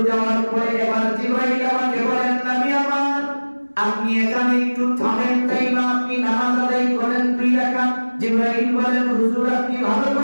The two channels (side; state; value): both; inverted; correlation -1.00